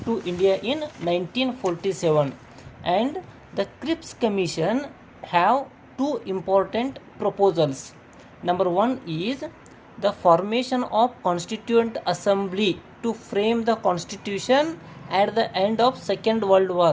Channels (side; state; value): both; identical; correlation 1.00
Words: to India in 1947, and the Crips Commission have two important proposals. Number one is the formation of Constituent Assembly to frame the Constitution at the end of Second World